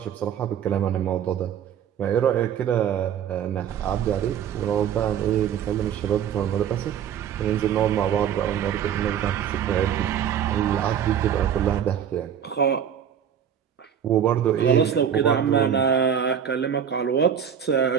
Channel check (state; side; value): quieter; left; 8.7 dB